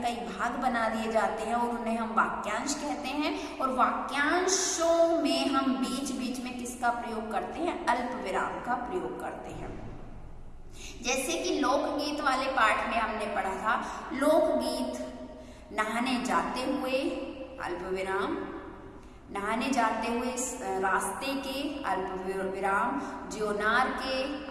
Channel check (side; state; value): both; identical; correlation 1.00